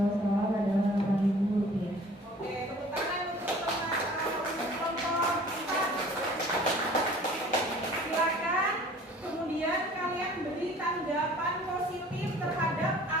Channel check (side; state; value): both; normal; correlation 0.49